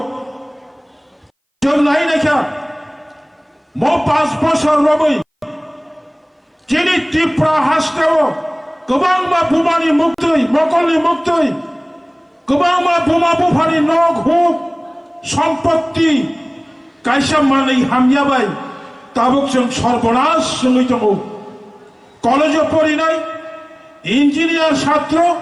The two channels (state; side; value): identical; both; correlation 1.00